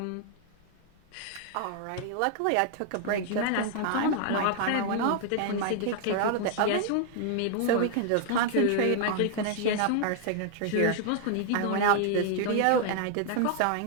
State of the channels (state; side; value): different; both; correlation 0.00